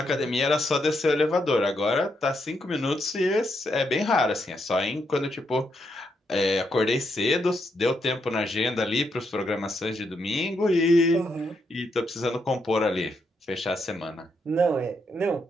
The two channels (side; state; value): both; normal; correlation 0.79